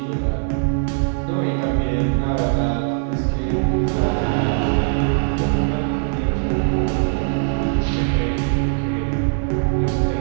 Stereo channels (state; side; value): silent; left; digital silence